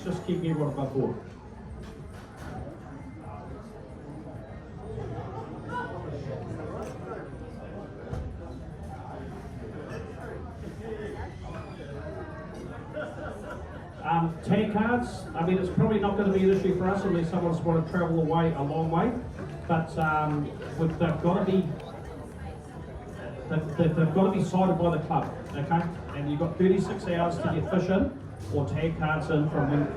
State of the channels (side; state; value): both; identical; correlation 1.00